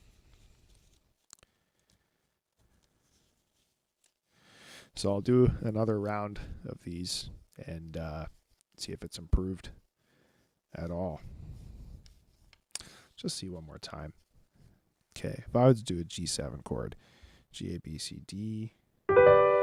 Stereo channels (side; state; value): both; identical; correlation 1.00